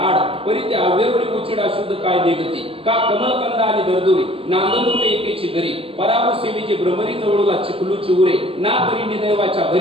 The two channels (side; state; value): left; late; 0.27 ms